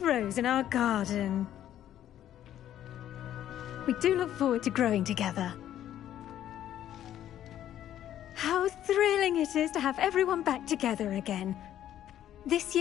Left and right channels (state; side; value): quieter; right; 11.5 dB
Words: in our garden. We do look forward to growing together. How thrilling it is to have everyone back together again. This